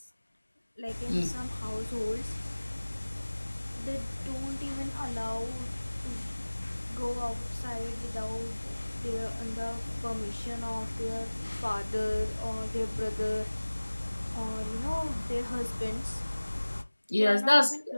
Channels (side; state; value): both; inverted; correlation -1.00